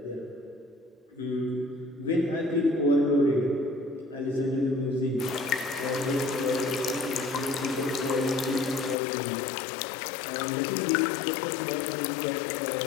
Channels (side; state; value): right; drops out; at 9.0 s